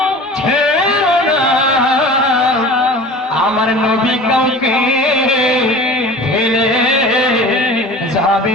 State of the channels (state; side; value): normal; both; correlation 0.40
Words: আমার নবী কাউকে ফেলে